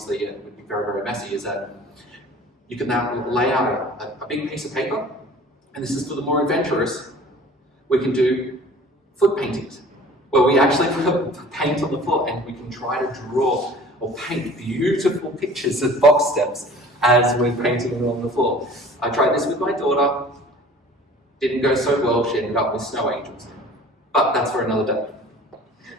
it would be very, very messy, is that you can now lay out a big piece of paper, and this is for the more adventurous. We can do foot paintings, where we actually put paint on the floor and we can try to draw or paint beautiful pictures of box steps as we're painting them on the floor. I tried this with my daughter. Didn't go so well. She ended up with snow angels. But that's for another day.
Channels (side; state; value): both; normal; correlation 0.46